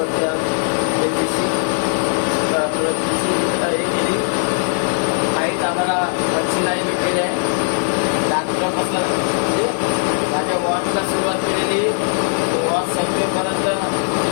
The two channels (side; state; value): right; silent; digital silence